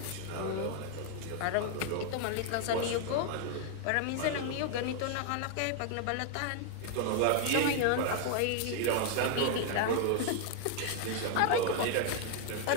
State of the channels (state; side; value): different; both; correlation 0.00